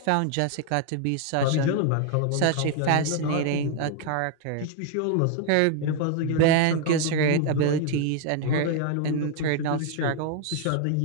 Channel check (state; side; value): different; both; correlation 0.00